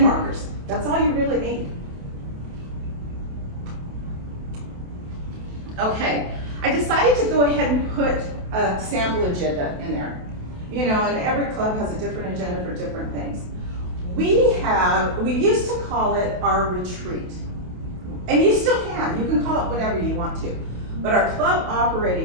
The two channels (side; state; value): left; late; 28 ms